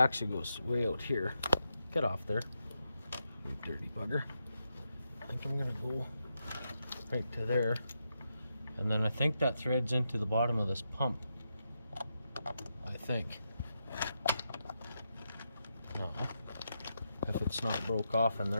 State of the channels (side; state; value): both; inverted; correlation -0.85